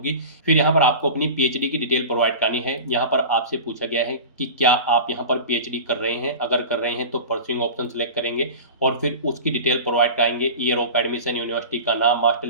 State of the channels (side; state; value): both; inverted; correlation -0.33